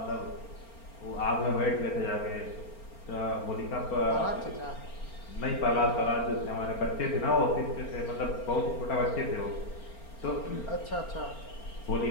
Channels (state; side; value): late; right; 4.4 ms